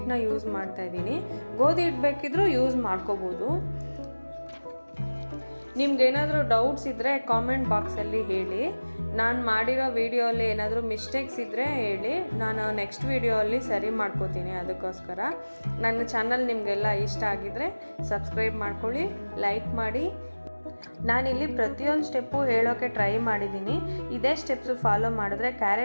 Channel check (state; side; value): inverted; both; correlation -1.00